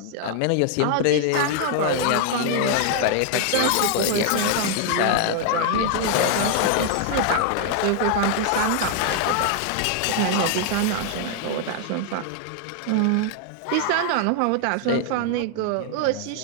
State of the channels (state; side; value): different; both; correlation 0.00